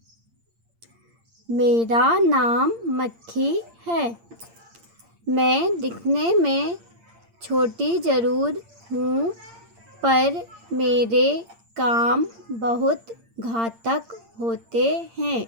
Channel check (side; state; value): left; late; 8.7 ms